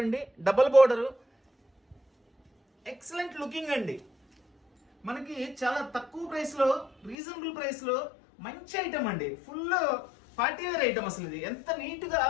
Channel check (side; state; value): right; drops out; at 7.2 s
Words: అండి, డబల్ బోర్డరు. ఎక్సలెంట్ లుకింగ్ అండి. మనకి చాలా తక్కువ ప్రైస్ లో, రీజనబుల్ ప్రైస్ లో మంచి ఐటమ్ అండి, ఫుల్ పార్టీ వేర్ ఐటమ్. అసలు ఇది ఎంత నీట్ గా